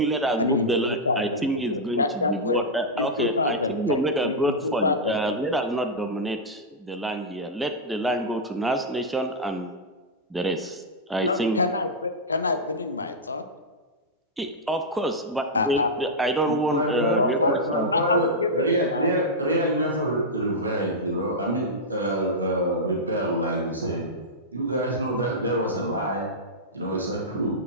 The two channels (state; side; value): normal; both; correlation -0.08